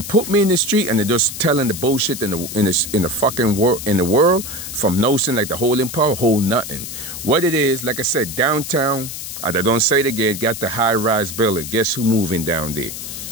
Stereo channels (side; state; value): left; noise; hiss, 8 dB below the sound